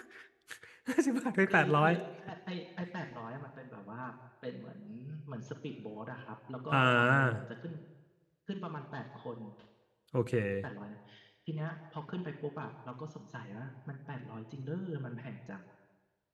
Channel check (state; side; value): identical; both; correlation 1.00